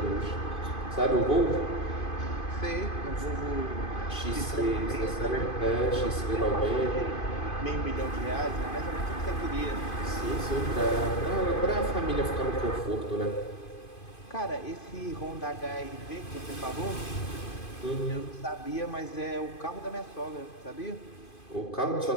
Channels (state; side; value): late; right; 2.5 ms